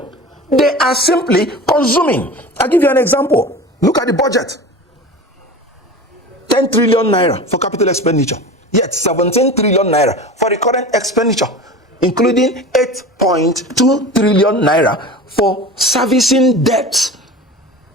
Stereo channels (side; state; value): both; normal; correlation 0.33